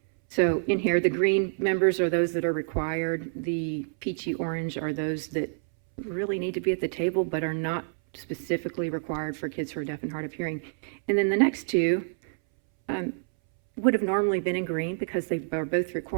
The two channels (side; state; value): left; silent; 60 dB below the other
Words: So in here, the green members are those that are required. The peachy orange are those that really need to be at the table, but are not specifically required for kids who are deaf and hard of hearing. And then the next two would have normally been in green because they are both